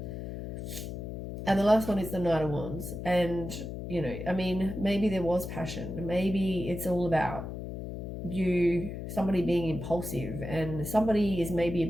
And the last one is the Knight of Wands. And, you know, I mean, maybe there was passion. Maybe it's all about somebody being impulsive, and somebody is maybe a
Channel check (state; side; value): noise; left; hum, 7 dB below the sound